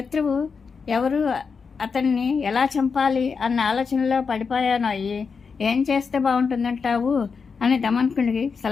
ఎవరు, అతన్ని ఎలా చంపాలి అన్న ఆలోచనలో పడిపోయాను. అయ్యి ఏం చేస్తే బాగుంటుందంటావు అని దమనకుడికి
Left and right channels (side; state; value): right; quieter; 5.4 dB